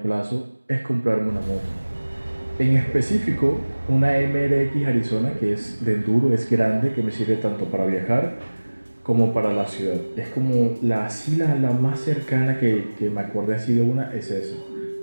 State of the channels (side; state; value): both; inverted; correlation -1.00